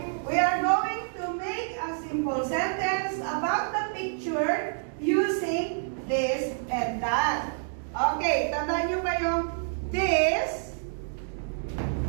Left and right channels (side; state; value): left; silent; digital silence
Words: We are going to make a simple sentence about the picture using this and that. Okay, tandaan nyo ba yung this